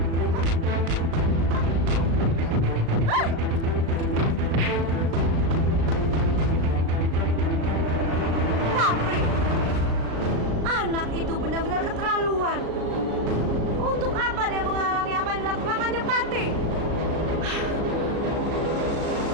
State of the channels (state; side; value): late; left; 36 ms